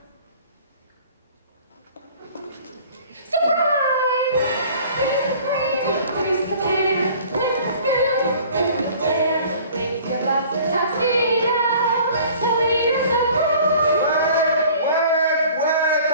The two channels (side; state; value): both; inverted; correlation -0.49